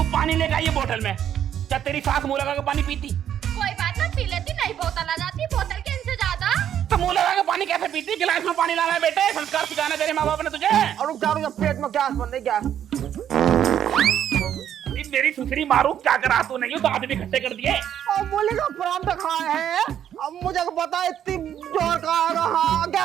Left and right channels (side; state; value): left; quieter; 10.0 dB